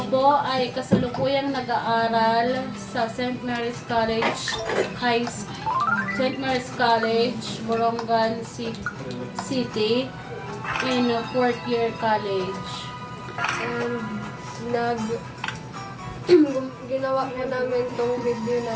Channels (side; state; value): both; identical; correlation 1.00